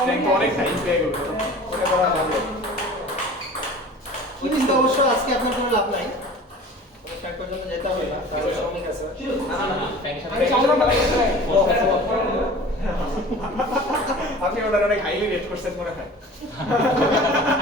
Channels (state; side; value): normal; both; correlation 0.41